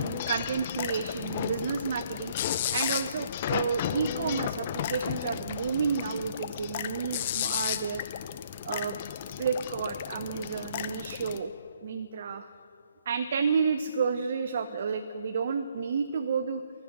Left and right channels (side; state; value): both; inverted; correlation -0.64